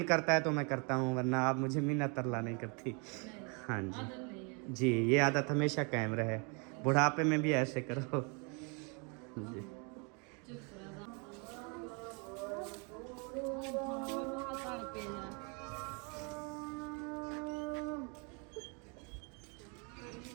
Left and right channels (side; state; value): left; quieter; 33.8 dB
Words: करता है तो मैं करता हूँ, वरना आप मुझे मिन्नत तरला नहीं करती। हाँ जी आदत नहीं है। जी, ये आदत हमेशा कायम रहे, बुढ़ापे में भी ऐसे करो जी।